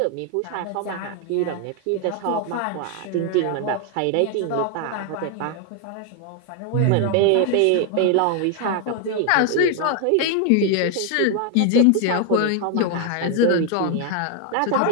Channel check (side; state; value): both; different; correlation 0.01